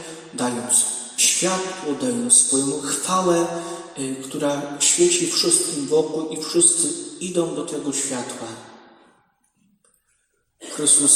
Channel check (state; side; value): identical; both; correlation 1.00